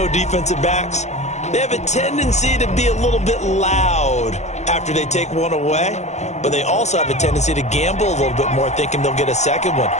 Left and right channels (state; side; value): late; right; 0.33 ms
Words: defensive backs, they have a tendency to be a little bit loud after they take one away, but they also have a tendency to gamble a little bit more, thinking they'll get a second one.